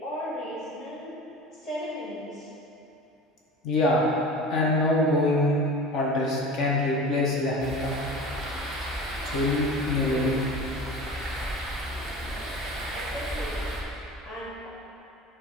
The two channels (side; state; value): both; normal; correlation 0.36